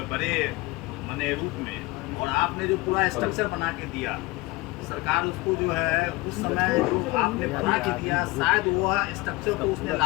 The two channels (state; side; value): quieter; right; 22.1 dB